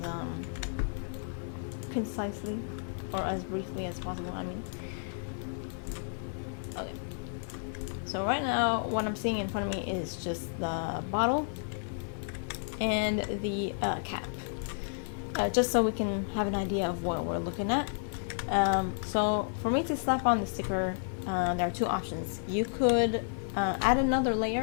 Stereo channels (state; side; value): silent; right; 57 dB below the other